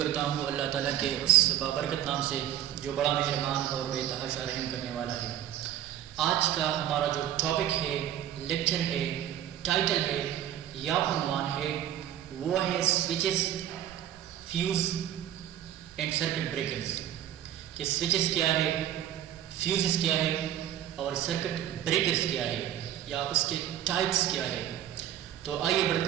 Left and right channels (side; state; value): left; quieter; 11.4 dB